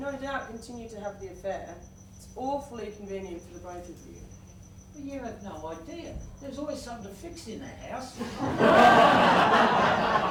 doubt continue to have the affair. It's awfully convenient for the both of you. Well, you have no idea. There's always something to fix in that house. You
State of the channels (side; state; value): both; identical; correlation 1.00